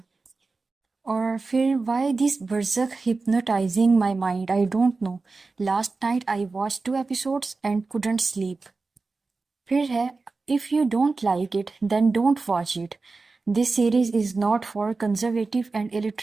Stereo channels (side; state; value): left; quieter; 3.9 dB